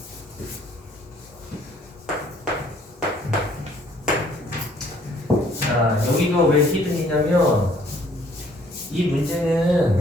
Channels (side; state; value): both; normal; correlation 0.61